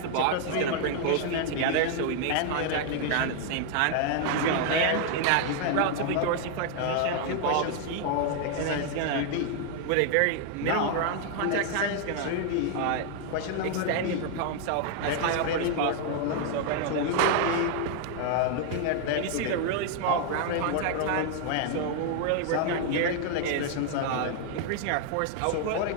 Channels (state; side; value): different; both; correlation 0.00